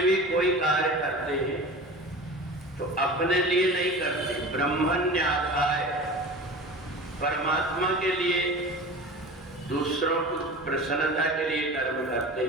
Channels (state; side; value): normal; both; correlation 0.36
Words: भी कोई कार्य करते हैं तो अपने लिए नहीं करते, ब्रह्मण्याधाय परमात्मा के लिए, दूसरों की प्रसन्नता के लिए कर्म करते